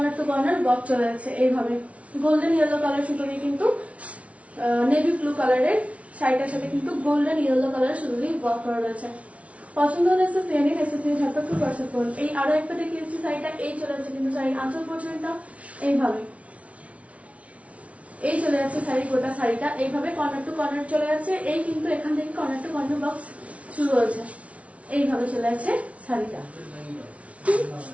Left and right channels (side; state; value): left; late; 0.064 ms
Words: টু কর্নার বক্স চলে যাচ্ছে, এইভাবে গোল্ডেন ইয়েলো কালার সুতো দিয়ে কিন্তু নেভি ব্লু কালারের শাড়িটার সাথে কিন্তু গোল্ডেন ইয়েলো কালার সুতো দিয়ে ওয়ার্ক করা রয়েছে। পছন্দ হলে এসে ফিরে নিন, এসে ফিরে ঝটপট করে হোয়াটসঅ্যাপ করুন। এই আরো একটা দেখিয়েছি শাড়িটা, এই চলে যাচ্ছে কিন্তু শাড়ির আঁচল পোর্শনটা এইভাবে, এই চলে যাচ্ছে শাড়ি গোটা শাড়িটা এইভাবে কর্নার টু কর্নার চলে যাচ্ছে। এই কিন্তু এখান থেকে কর্নার টু কর্নার বক্স শুরু হয়েছে, এইভাবে চলে যাচ্ছে শাড়িটা,